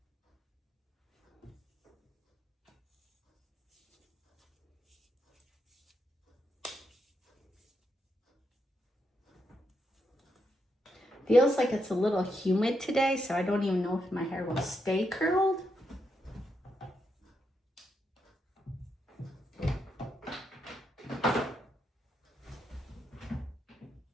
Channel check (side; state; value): both; normal; correlation 0.81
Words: Feels like it's a little humid today, so I don't even know if my hair will stay curled.